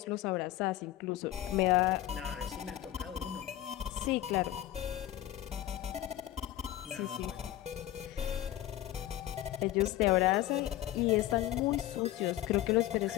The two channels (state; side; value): quieter; right; 13.9 dB